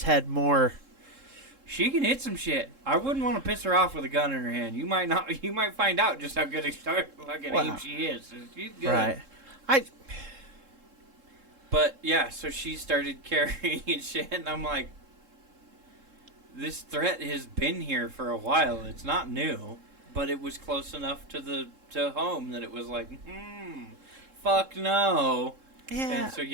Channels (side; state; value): left; late; 3.7 ms